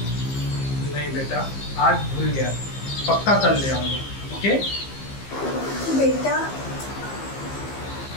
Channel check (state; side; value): late; right; 15 ms